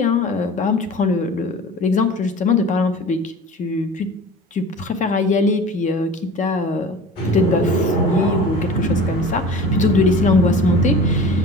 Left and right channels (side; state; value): both; normal; correlation 0.39